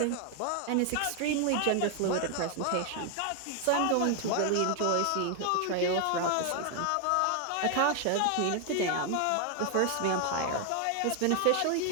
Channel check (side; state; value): both; different; correlation 0.01